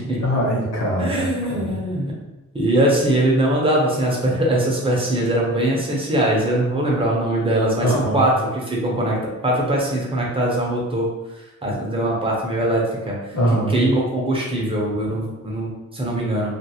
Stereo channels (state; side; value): normal; both; correlation 0.39